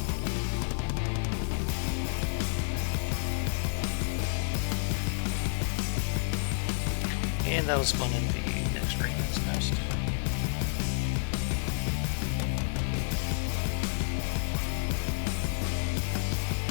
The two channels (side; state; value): right; silent; 58 dB below the other